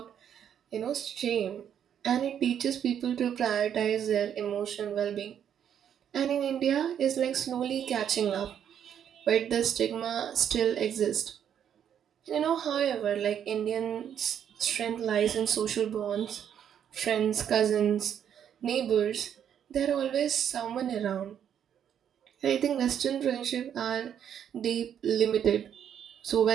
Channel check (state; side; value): quieter; left; 9.1 dB